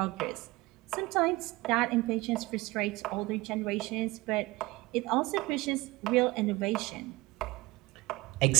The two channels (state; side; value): quieter; left; 20.7 dB